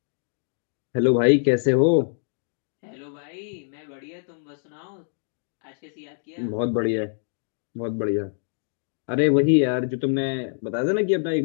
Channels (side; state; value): right; silent; digital silence